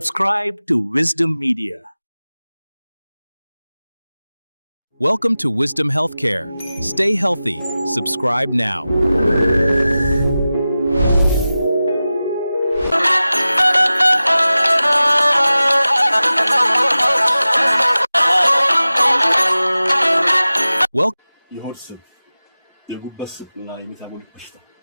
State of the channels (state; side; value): inverted; both; correlation -0.95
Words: to Wisdom Media. Welcome to Wisdom Healthcare. Stay healthy. Subscribe now. Welcome. የሆድ ስብ፣ የጉበት ስብና የሜታቦሊክ በሽታ